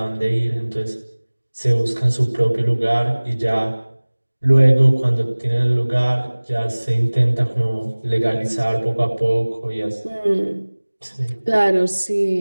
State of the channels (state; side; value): inverted; both; correlation -1.00